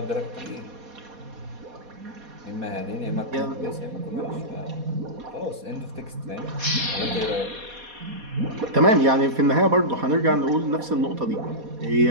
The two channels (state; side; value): late; left; 4.2 ms